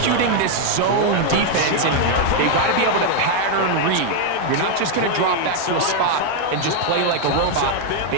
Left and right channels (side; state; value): both; different; correlation 0.00